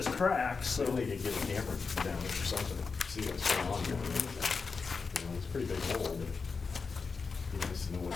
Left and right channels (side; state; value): right; quieter; 4.9 dB